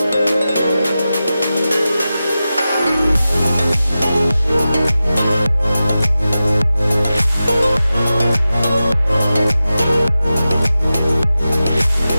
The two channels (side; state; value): both; inverted; correlation -0.93